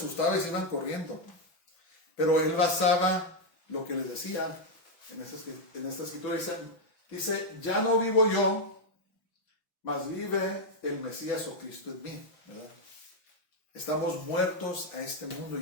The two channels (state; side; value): late; right; 5.9 ms